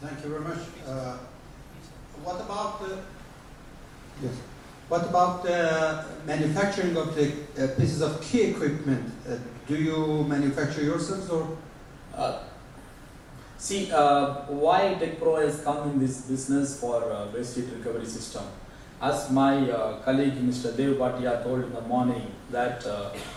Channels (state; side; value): identical; both; correlation 1.00